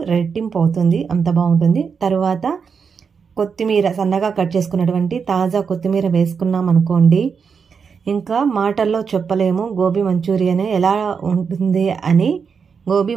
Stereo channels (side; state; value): left; quieter; 6.0 dB